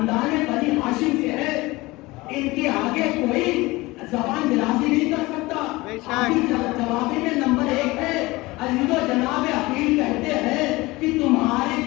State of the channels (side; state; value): right; quieter; 21.2 dB